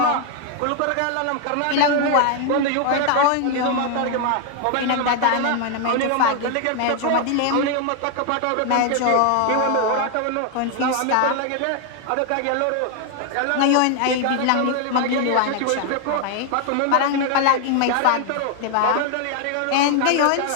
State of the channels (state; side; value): different; both; correlation 0.00